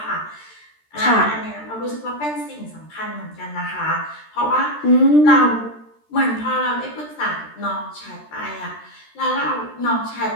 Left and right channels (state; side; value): late; right; 13 ms